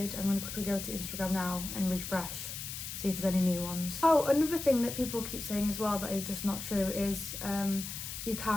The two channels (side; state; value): left; noise; hiss, 7 dB below the sound